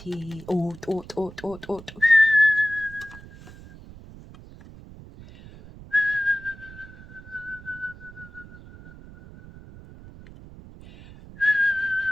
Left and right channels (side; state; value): right; noise; rumble, 18 dB below the sound